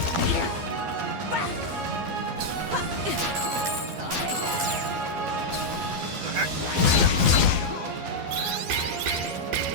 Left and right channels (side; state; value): left; late; 12 ms